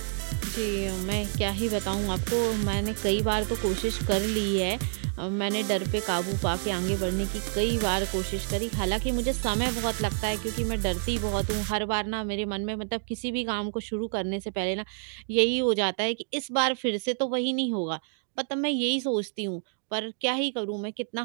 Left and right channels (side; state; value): left; silent; digital silence